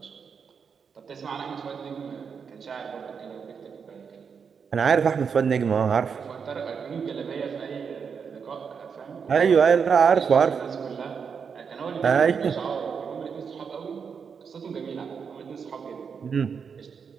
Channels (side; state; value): left; quieter; 6.3 dB